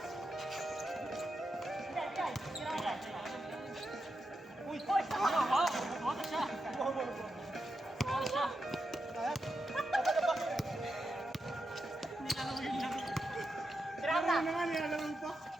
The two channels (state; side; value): normal; both; correlation 0.87